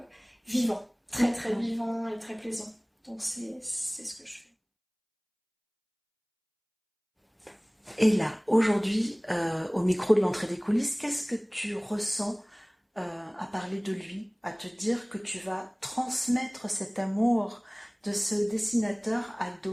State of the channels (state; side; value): identical; both; correlation 1.00